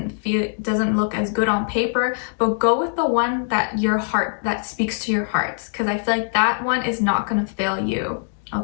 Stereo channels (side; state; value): right; silent; digital silence